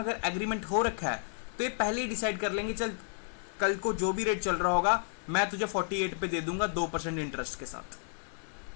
अगर एग्रीमेंट हो रखा है तो ये पहले ही डिसाइड कर लेंगे, चल कल को जो भी रेट चल रहा होगा मैं तुझे 48 पे दे दूंगा 2% इंटरेस्ट के साथ।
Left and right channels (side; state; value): right; silent; 56 dB below the other